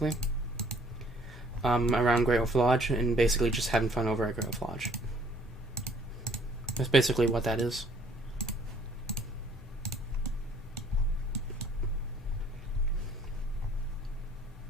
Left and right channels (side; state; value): both; normal; correlation 0.59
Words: around Great Wolf Lodge, and basically just having fun over at Great Wolf Lodge. That's basically what that is.